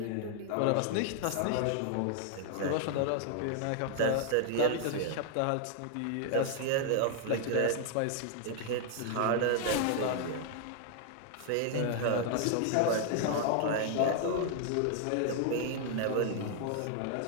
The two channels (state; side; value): different; both; correlation 0.00